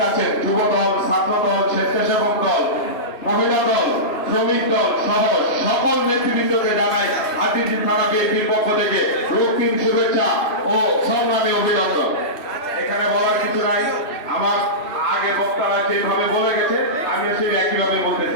আছেন। যুব দল, ছাত্র দল, স্বেচ্ছাসেবক দল, মহিলা দল, শ্রমিক দল সহ সকল নেতৃবৃন্দকে জানাই হাতিরঝিল থানা বিএনপির পক্ষ থেকে রক্তিম শুভেচ্ছা ও সংগ্রামী অভিনন্দন। এখানে বলার কিছু নাই, আমার আগে বক্তারা যেভাবে বলে গেছে আমি সেই একইভাবে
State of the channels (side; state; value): right; late; 2.8 ms